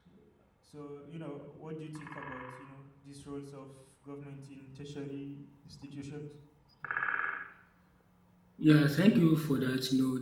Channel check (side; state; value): both; identical; correlation 1.00